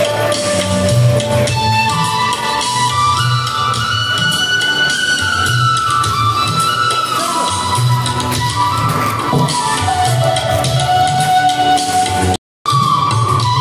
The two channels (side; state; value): both; identical; correlation 1.00